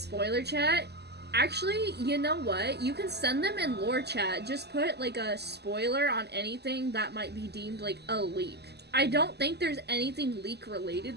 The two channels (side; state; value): left; late; 0.49 ms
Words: chat? Actually, you know what? You can send them in lore chat. Just put like a spoiler on anything that might be deemed like a leak. I don't think there's anything leak